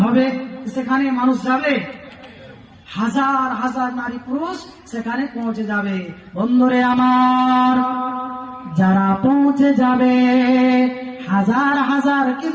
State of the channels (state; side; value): identical; both; correlation 1.00